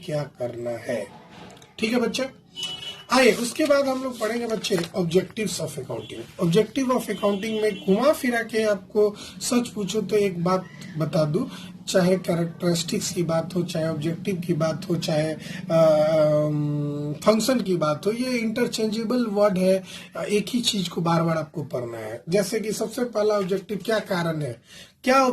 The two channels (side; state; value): both; identical; correlation 1.00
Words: क्या करना है, ठीक है बच्चा। आइए उसके बाद हम लोग पढ़ेंगे बच्चे objectives of accounting. Objective of accounting में घुमा फिरा के आपको सच पूछो तो एक बात बता दूं, चाहे कैरेक्टरिस्टिक्स की बात हो, चाहे ऑब्जेक्टिव की बात हो, चाहे फंक्शन की बात हो, ये इंटरचेंजेबल वर्ड है। एक ही चीज को बार बार आपको पढ़ना है। जैसे कि सबसे पहला ऑब्जेक्टिव, क्या कारण है, क्या